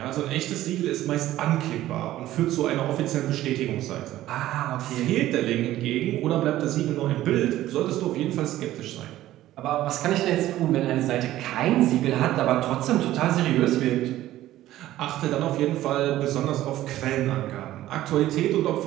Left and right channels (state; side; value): quieter; left; 14.4 dB